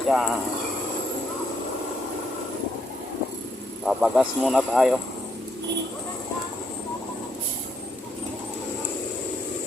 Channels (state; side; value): normal; both; correlation 0.75